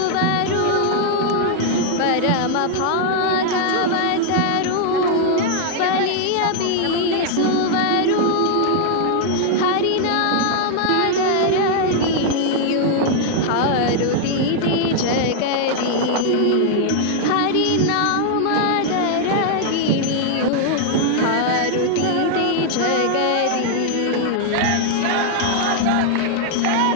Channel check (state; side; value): different; both; correlation 0.00